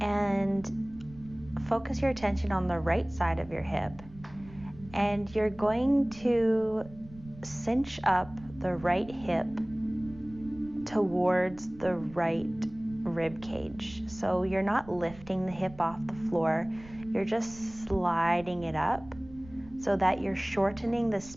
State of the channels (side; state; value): right; noise; rumble, 19 dB below the sound